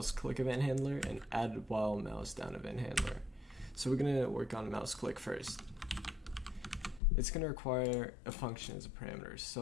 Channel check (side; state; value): right; drops out; at 7.0 s